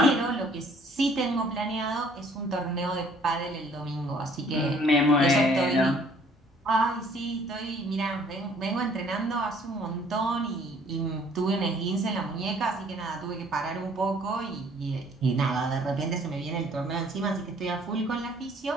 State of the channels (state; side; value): normal; both; correlation 0.58